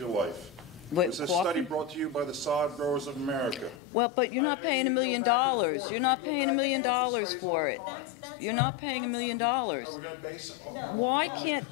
life. What, It's a coffee? study brought to you by the Sod Growers of America. Well, but you're not I mean, paying you $1 can go million. back and forth. You're not We go paying $1 back million and forth. Studies all for the it. time. You're not paying $1 million. Are we going to base it No. Why on the can't,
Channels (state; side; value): drops out; right; at 3.8 s